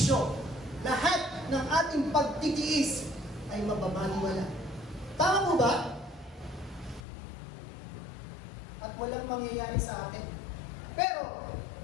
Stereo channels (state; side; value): drops out; right; at 7.0 s